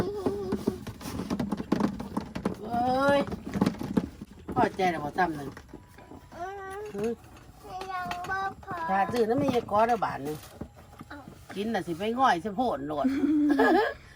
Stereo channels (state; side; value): identical; both; correlation 1.00